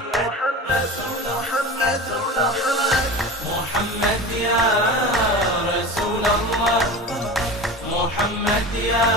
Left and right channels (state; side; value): normal; both; correlation 0.31